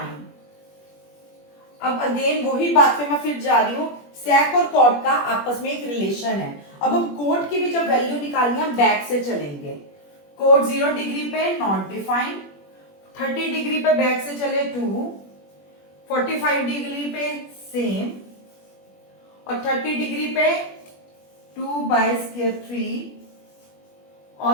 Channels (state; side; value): late; right; 21 ms